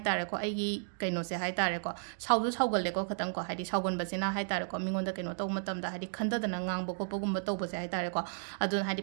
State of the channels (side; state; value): left; silent; digital silence